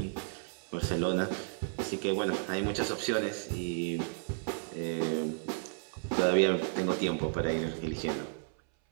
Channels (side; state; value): left; silent; 56 dB below the other